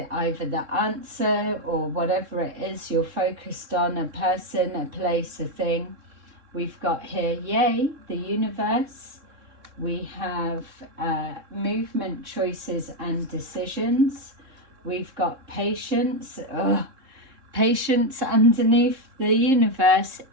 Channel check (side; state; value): left; late; 3.7 ms